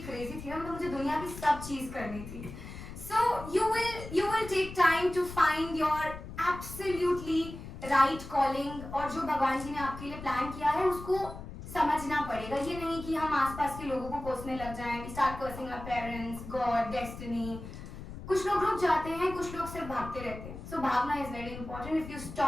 crazy थी ना, मतलब मुझे दुनिया की सब चीज करनी थी. So you will take time to find your absolutely right calling, और जो भगवान जी ने आपके लिए प्लान किया है उसको समझना पड़ेगा. ये नहीं कि हम आसपास के लोगों को कोसने लग जाएं. We start cursing our parents, God, destiny. कुछ लोग रुक जाते हैं, कुछ लोग सिर्फ भागते रहते हैं. So भागना is very important. If you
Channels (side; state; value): left; noise; rumble, 11 dB below the sound